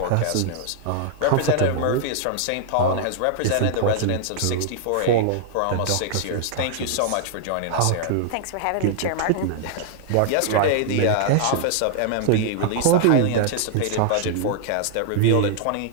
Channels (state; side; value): different; both; correlation -0.01